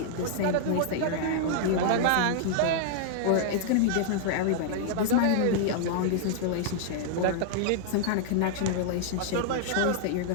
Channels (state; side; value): different; both; correlation -0.01